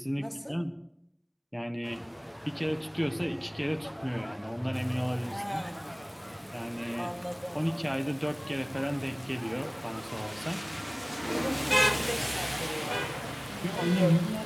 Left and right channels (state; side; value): identical; both; correlation 1.00